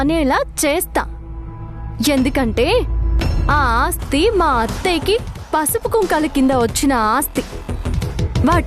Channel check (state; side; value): identical; both; correlation 1.00